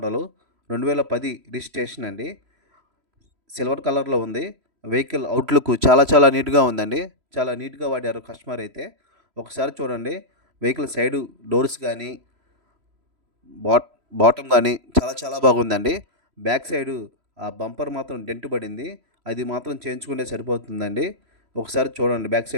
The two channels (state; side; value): late; left; 3.0 ms